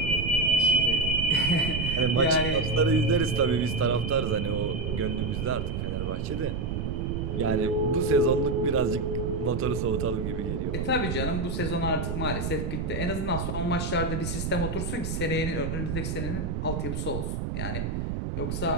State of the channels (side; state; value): right; noise; rumble, 2 dB below the sound